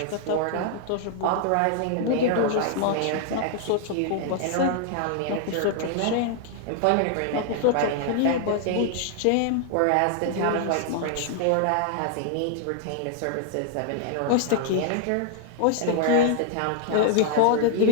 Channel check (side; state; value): both; different; correlation 0.00